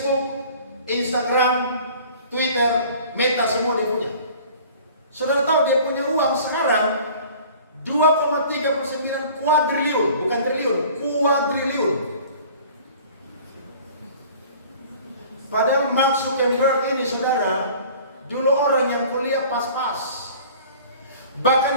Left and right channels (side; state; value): both; inverted; correlation -0.47